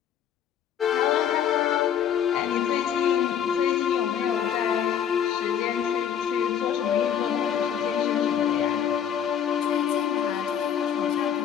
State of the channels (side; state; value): right; quieter; 8.9 dB